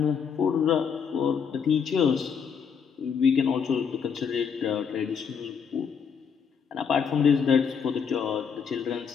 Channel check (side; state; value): right; quieter; 6.7 dB